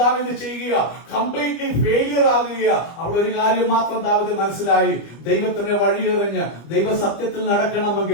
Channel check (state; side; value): late; right; 25 ms